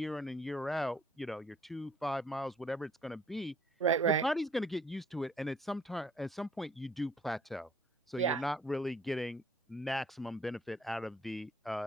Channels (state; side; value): normal; both; correlation 0.61